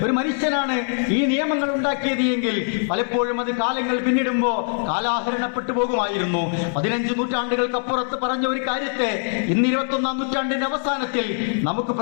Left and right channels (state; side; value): silent; right; 60 dB below the other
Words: ഒരു മനുഷ്യനാണ് ഈ നിയമങ്ങൾ ഉണ്ടാക്കിയത് എങ്കിൽ പലപ്പോഴും അത് കാലങ്ങൾ പിന്നിടുമ്പോൾ കാലാഹരണപ്പെട്ടു പോകുമായിരുന്നു. 15 നൂറ്റാണ്ടുകൾക്കപ്പുറത്ത് പറഞ്ഞ ഒരു കാര്യത്തെ ഇന്ന് 21-ാം നൂറ്റാണ്ടിന്റെ അവസാനത്തിൽ നമുക്ക്